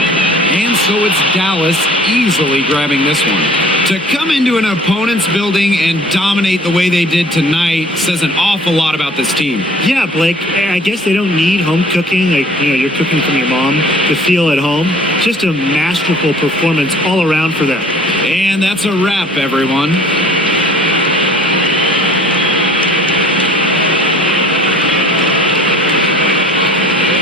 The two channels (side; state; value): both; normal; correlation 0.50